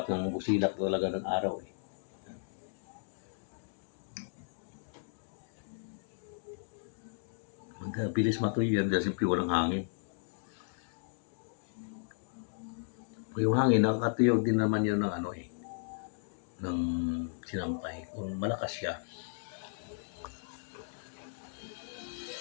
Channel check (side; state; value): right; silent; digital silence